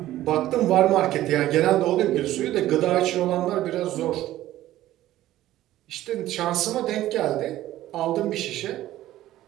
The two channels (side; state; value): left; quieter; 14.4 dB